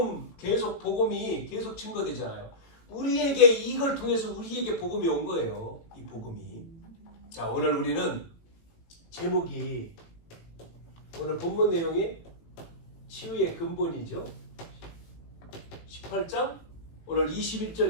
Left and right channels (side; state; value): right; late; 18 ms